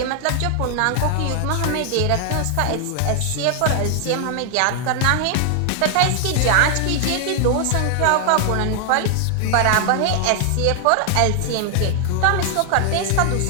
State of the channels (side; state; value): both; different; correlation 0.00